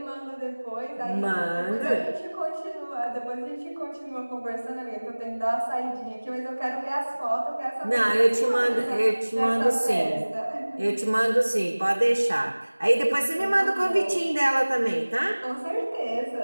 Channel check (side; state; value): both; inverted; correlation -1.00